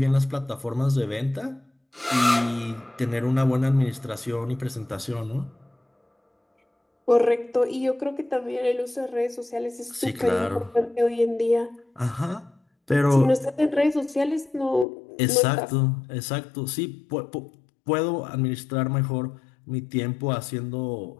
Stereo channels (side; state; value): right; drops out; at 14.9 s